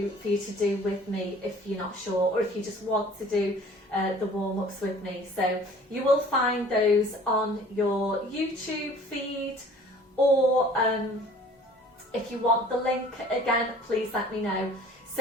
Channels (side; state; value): both; normal; correlation 0.50